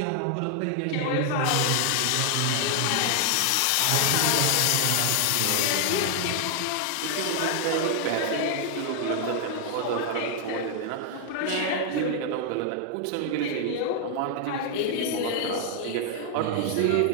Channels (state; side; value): different; both; correlation 0.00